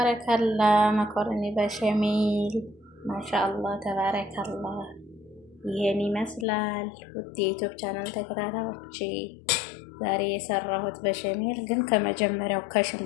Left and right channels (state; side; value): drops out; right; at 6.5 s